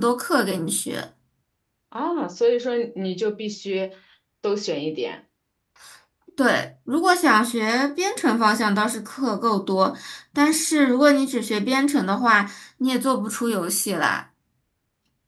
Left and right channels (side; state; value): both; identical; correlation 1.00